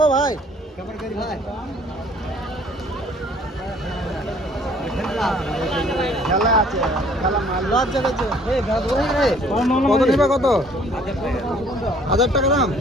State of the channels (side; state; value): both; normal; correlation 0.57